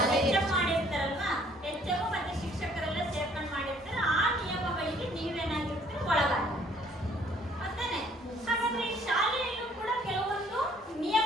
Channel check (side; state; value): both; normal; correlation 0.61